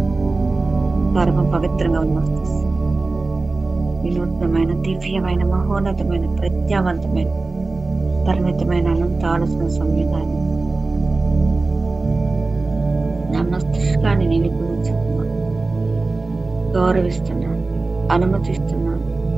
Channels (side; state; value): left; quieter; 3.5 dB